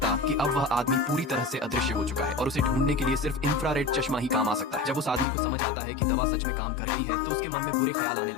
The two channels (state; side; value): drops out; right; at 5.2 s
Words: कि अब वह आदमी पूरी तरह से अदृश्य हो चुका है और उसे ढूंढने के लिए सिर्फ इंफ्रारेड चश्मा ही काम आ सकता है। जब उस आदमी को समझ आता है कि दवा सच में काम कर गई है तो उसके मन में बुरे ख्याल आने